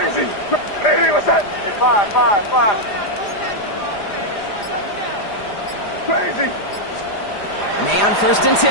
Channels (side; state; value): right; late; 4.9 ms